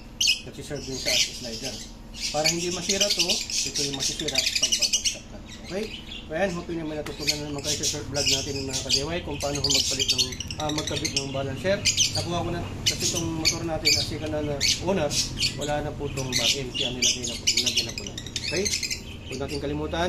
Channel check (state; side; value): identical; both; correlation 1.00